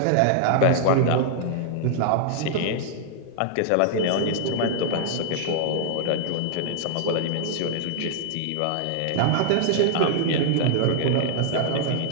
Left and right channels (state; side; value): different; both; correlation -0.01